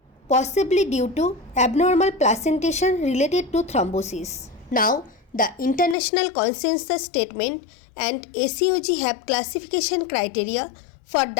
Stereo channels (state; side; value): drops out; right; at 6.0 s